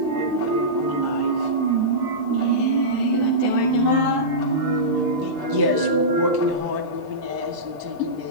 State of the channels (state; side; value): normal; both; correlation -0.16